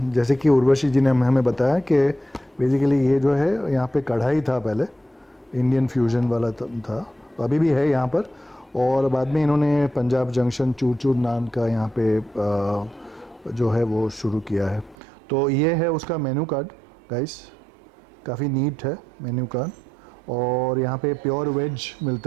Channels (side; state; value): left; drops out; at 15.0 s